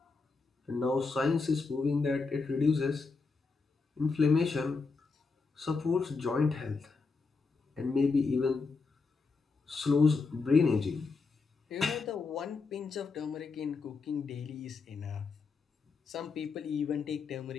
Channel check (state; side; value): quieter; right; 4.4 dB